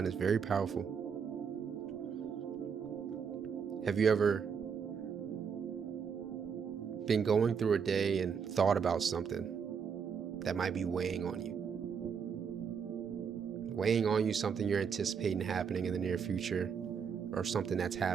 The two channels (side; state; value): left; quieter; 6.6 dB